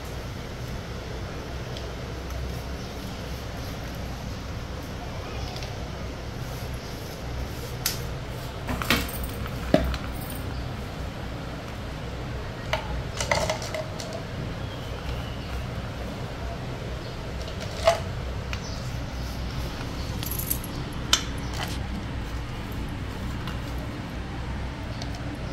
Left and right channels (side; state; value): both; identical; correlation 1.00